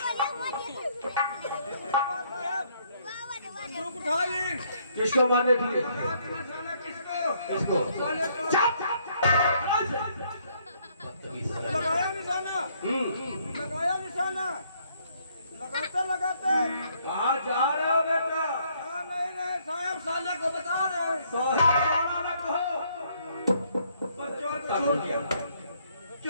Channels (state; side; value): inverted; both; correlation -0.68